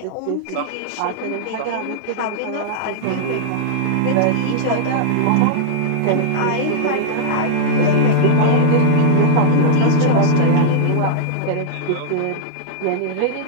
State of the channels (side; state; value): both; different; correlation -0.02